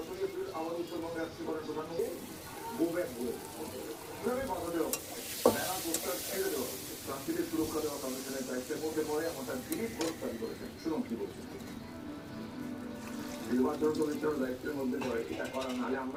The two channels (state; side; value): identical; both; correlation 1.00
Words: এপ্রিল আবার উত্তরবঙ্গে আসছে করেন প্রধানমন্ত্রী। গোব্যাক বলে কিভাবে বাধা দেওয়া মেলা পোস্টার ছেড়ে দেওয়া প্রার্থীদের সুরক্ষা দেওয়া কমিশনের দায়িত্বের মধ্যে পড়ে এমনটা দিলীপ ঘোষ দাবি করেছেন। শুনুন কি বলছেন। নির্বাচন কমিশনের দায়িত্বের মধ্যে পড়ে এটা করা, নাহলে